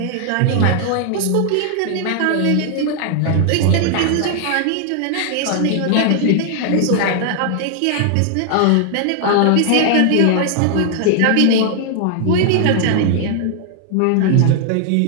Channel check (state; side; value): different; both; correlation 0.00